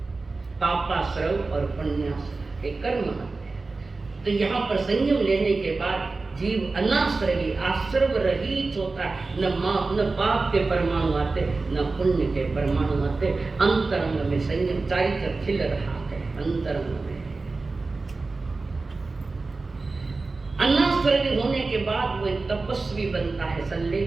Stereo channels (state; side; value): quieter; left; 3.7 dB